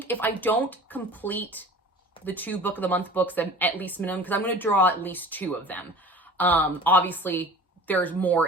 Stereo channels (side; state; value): both; normal; correlation 0.42